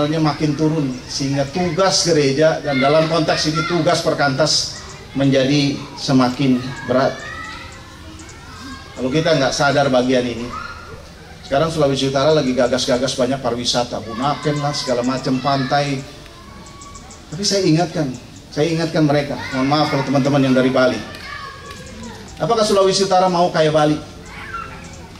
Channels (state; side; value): identical; both; correlation 1.00